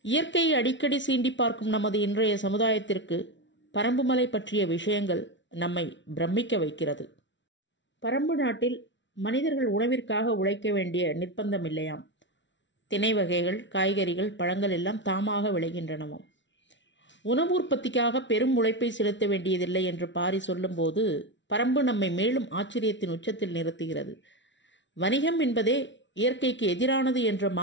இயற்கையை அடிக்கடி சீண்டி பார்க்கும் நமது இன்றைய சமுதாயத்திற்கு பரம்புமலை பற்றிய விஷயங்கள் நம்மை பிரமிக்க வைக்கிறது. பரம்பு நாட்டில் மனிதர்கள் உணவிற்காக உழைக்க வேண்டிய நிர்பந்தம் இல்லையாம். திணை வகைகள், காய்கறிகள், பழங்கள் எல்லாம் தாமாக விளைகின்றனவாம். உணவு உற்பத்திக்காக பெரும் உழைப்பை செலுத்த வேண்டியதில்லை என்று பாரி சொல்லும்போது பரம்பு நம்மை மேலும் ஆச்சரியத்தின் உச்சத்தில் நிறுத்துகிறது. வணிகம் என்பதே இயற்கைக்கு எதிரானது என்ற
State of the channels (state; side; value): late; right; 0.54 ms